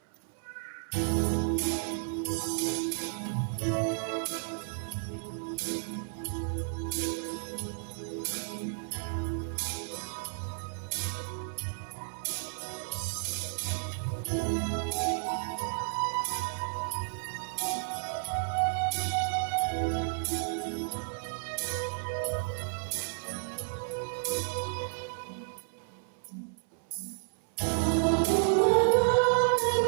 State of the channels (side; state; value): left; silent; 56 dB below the other